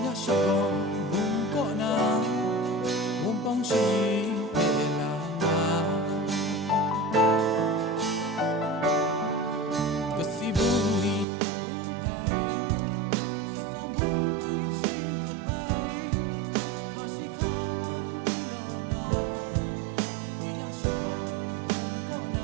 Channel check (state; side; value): drops out; left; at 11.2 s